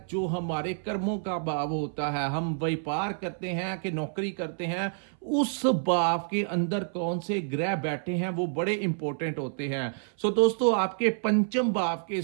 जो हमारे कर्मों का भाव होता है। हम व्यापार करते हैं कि नौकरी करते हैं, उस भाव के अंदर कौन से ग्रह बैठे हैं वो बड़े इंपॉर्टेंट होते हैं। सो दोस्तों आपके पंचम भाव के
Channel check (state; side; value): silent; left; 59 dB below the other